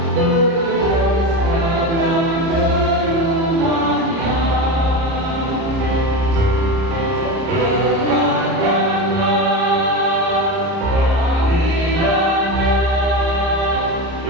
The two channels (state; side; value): late; left; 30 ms